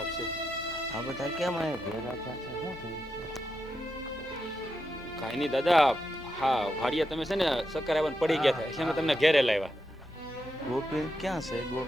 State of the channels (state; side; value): noise; left; hum, 23 dB below the sound